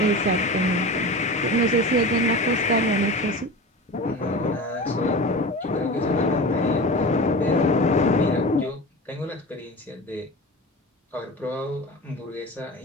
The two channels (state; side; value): normal; both; correlation 0.31